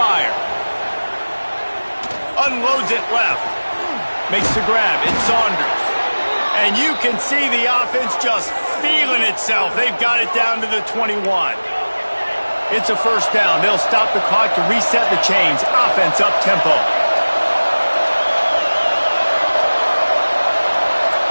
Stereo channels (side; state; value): both; inverted; correlation -1.00